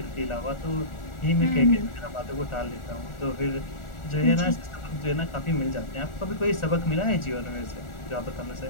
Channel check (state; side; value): late; right; 1.4 ms